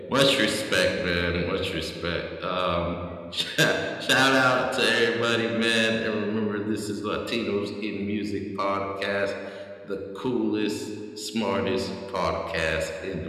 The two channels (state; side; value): identical; both; correlation 1.00